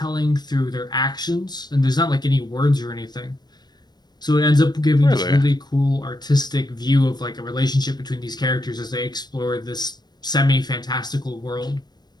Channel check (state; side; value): late; right; 0.20 ms